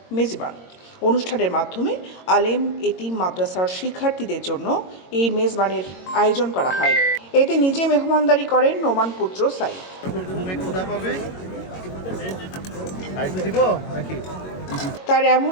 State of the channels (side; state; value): right; late; 22 ms